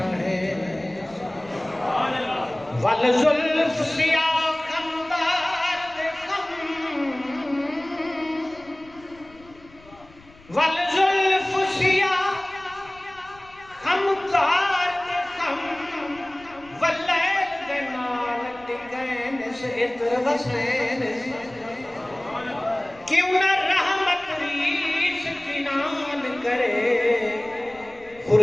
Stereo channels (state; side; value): noise; left; rumble, 25 dB below the sound